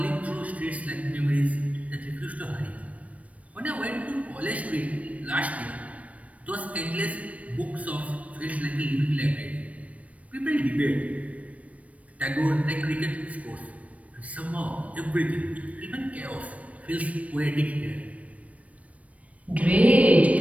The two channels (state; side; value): late; left; 0.066 ms